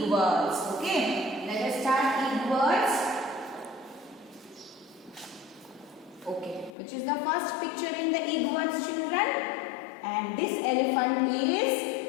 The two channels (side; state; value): right; drops out; at 6.8 s